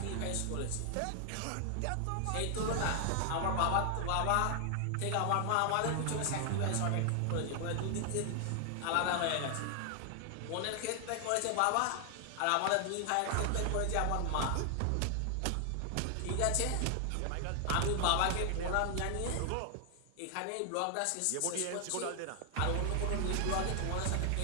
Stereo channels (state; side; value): different; both; correlation 0.00